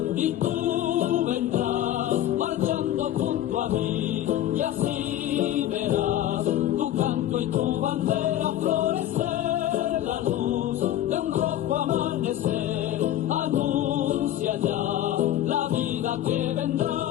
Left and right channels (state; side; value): quieter; right; 12.5 dB